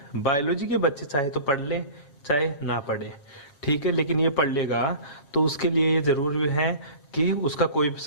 बायोलॉजी के बच्चे चाहे तो पढ़ ले चाहे ना पढ़े, ठीक है, लेकिन ये पढ़ लेगा तो उसके लिए ये जरूरी है कि उसका कोई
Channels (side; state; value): right; late; 7.4 ms